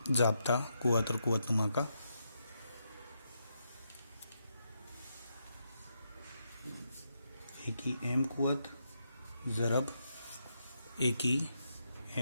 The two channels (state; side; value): inverted; both; correlation -0.82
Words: जाब्ता कुव्वत और कुव्वतनुमा का। ए की एम कुव्वत ज़रब ए की